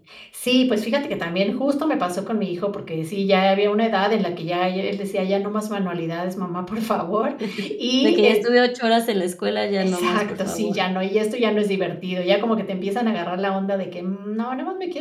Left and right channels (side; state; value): both; identical; correlation 1.00